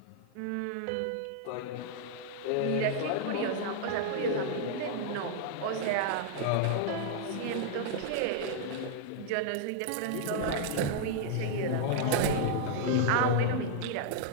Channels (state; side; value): different; both; correlation -0.01